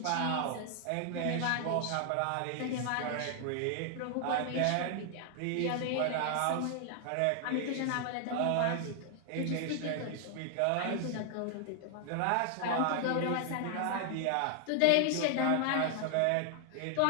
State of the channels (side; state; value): both; different; correlation 0.00